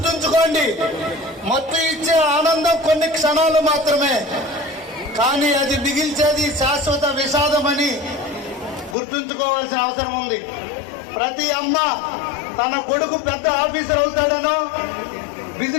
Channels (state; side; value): drops out; right; at 9.0 s